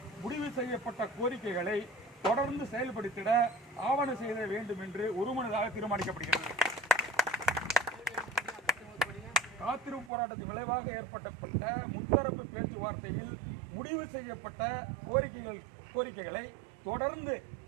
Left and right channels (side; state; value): left; drops out; at 10.1 s